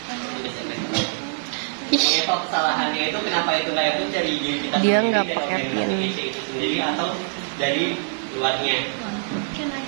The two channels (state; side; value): silent; left; digital silence